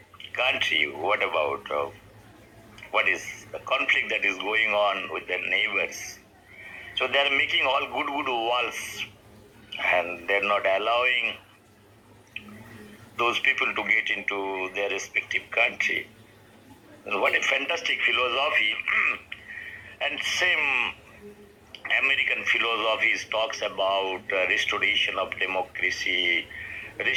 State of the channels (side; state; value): both; identical; correlation 1.00